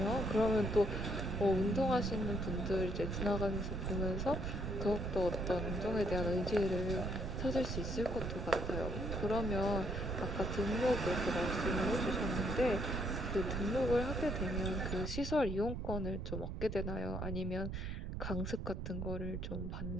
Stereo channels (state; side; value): noise; right; rumble, 5 dB below the sound